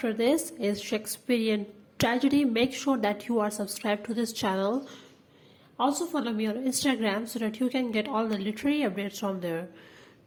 this is Shakespearean Tragedy. Make sure that you are subscribed to this channel. Also follow me on Instagram so that you can get all the literary updates from there.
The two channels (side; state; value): both; identical; correlation 1.00